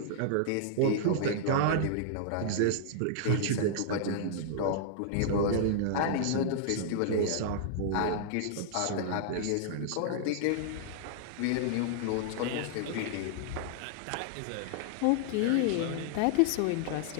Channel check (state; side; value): different; both; correlation -0.01